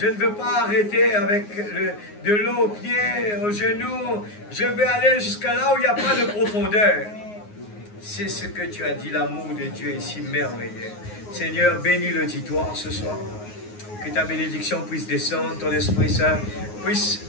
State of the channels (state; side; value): late; right; 9.6 ms